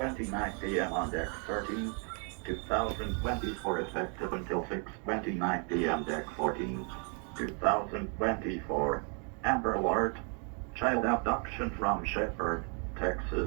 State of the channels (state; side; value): quieter; left; 38.8 dB